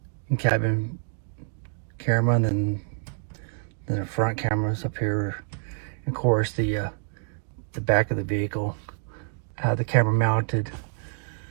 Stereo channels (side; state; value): left; silent; digital silence